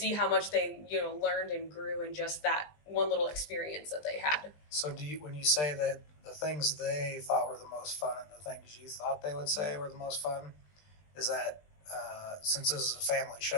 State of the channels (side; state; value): right; late; 20 ms